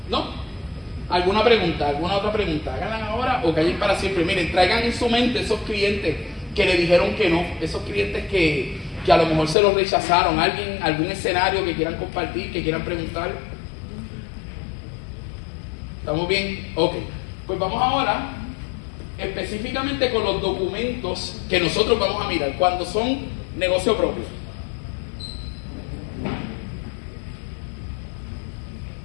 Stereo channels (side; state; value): right; drops out; at 9.6 s